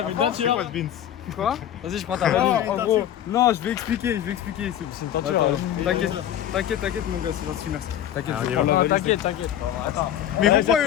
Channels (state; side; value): quieter; right; 10.9 dB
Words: une teinture. Quoi de Vince? Quoi? Vas-y, je prends ta main. En gros, non, je vais expliquer. C'est une teinture. T'inquiète, mon gars, c'est gentil, merci. T'inquiète. Attends. Mais pourquoi